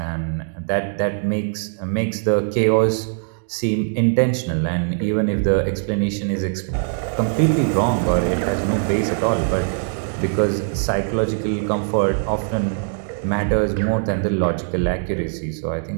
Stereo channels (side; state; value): left; silent; digital silence